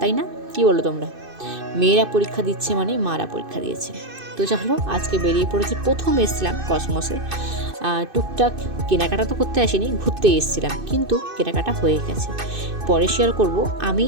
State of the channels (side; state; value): left; late; 2.6 ms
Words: না? কি বলো তোমরা? মেয়েরা পরীক্ষা দিচ্ছে মানে মারা পরীক্ষা দিয়েছে। তো চলো, আজকে বেরিয়ে পড়েছি। প্রথম এসেছিলাম কসমোসে, টুকটাক কেনাকাটা তো করতে আসিনি, ঘুরতেই এসেছিলাম, কিন্তু কেনাকাটা হয়ে গেছে। পরে শেয়ার করব আমি